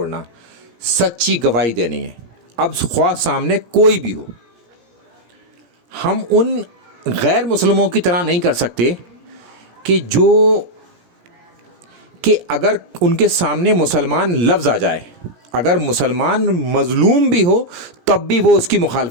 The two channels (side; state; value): left; late; 17 ms